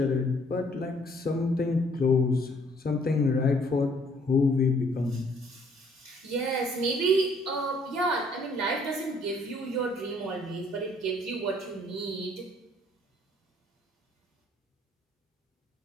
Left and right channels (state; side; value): normal; both; correlation 0.62